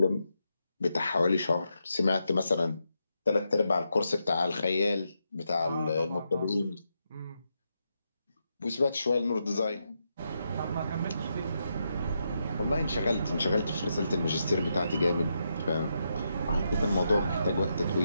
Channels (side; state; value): both; inverted; correlation -0.83